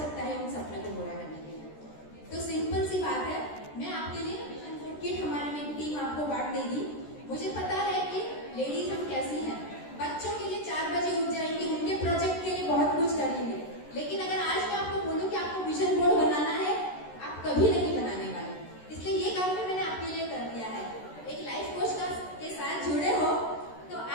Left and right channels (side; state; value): right; late; 13 ms